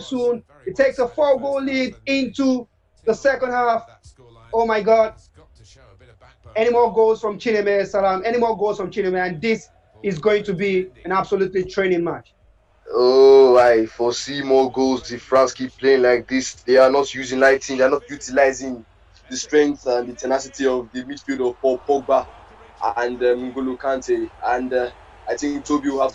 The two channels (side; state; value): both; identical; correlation 1.00